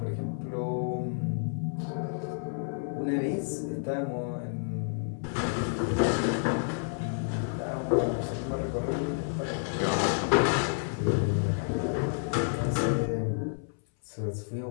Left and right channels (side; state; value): right; silent; 58 dB below the other